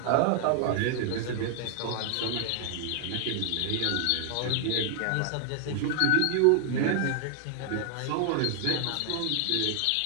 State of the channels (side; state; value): both; different; correlation 0.00